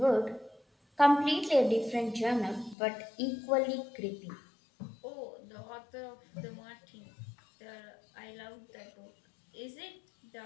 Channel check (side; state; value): right; drops out; at 2.8 s